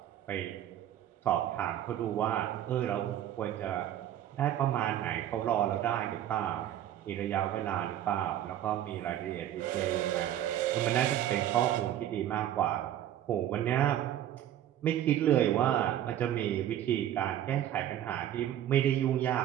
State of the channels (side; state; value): left; quieter; 11.7 dB